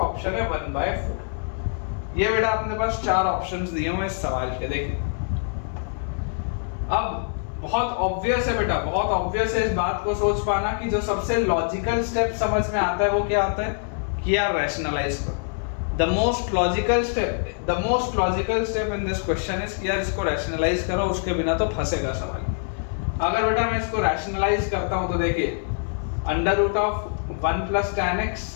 है 1/4। ये बेटा अपने पास चार ऑप्शंस दिए हुए इस सवाल के। देखिए अब बहुत ऑब्वियस है बेटा, बहुत ऑब्वियस है इस बात को सोच पाना कि जो सबसे लॉजिकल स्टेप समझ में आता है वो क्या आता है कि यार रैशनलाइज करो। The most logical step in this question is कि यार इसको रैशनलाइज करो, उसके बिना तो फंसेगा सवाल। अगर बेटा मैं इसको रैशनलाइज करता हूं तो देखिए under root of 1 plus tan x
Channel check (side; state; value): right; silent; 62 dB below the other